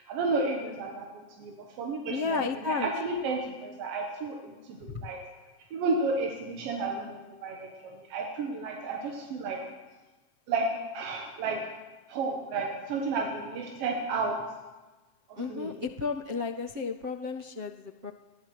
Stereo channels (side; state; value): left; late; 7.5 ms